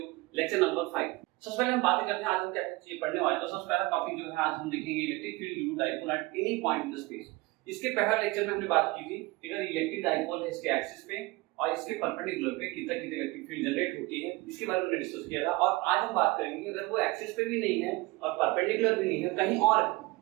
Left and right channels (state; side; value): quieter; left; 22.0 dB